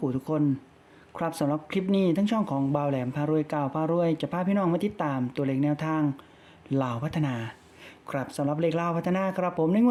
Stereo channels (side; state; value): both; identical; correlation 1.00